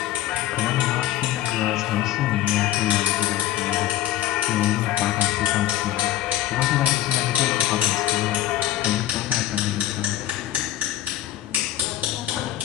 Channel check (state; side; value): quieter; right; 13.5 dB